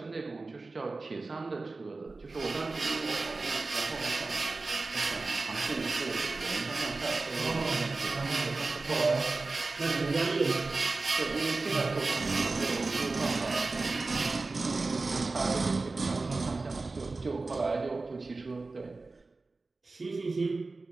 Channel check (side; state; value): left; quieter; 3.6 dB